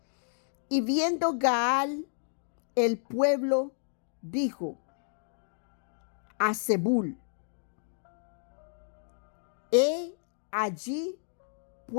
Y viendo Gaal el pueblo, dijo a Zebul: he allí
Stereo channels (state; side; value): silent; right; digital silence